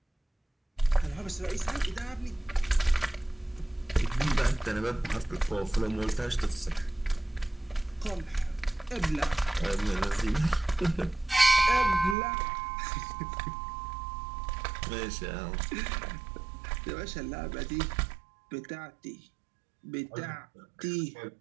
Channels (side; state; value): left; drops out; at 12.2 s